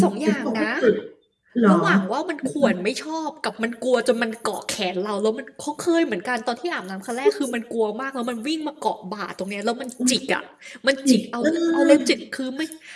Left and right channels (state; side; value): identical; both; correlation 1.00